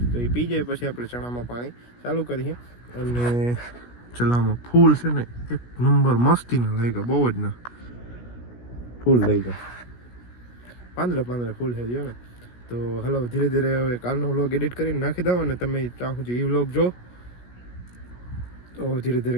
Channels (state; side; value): late; right; 17 ms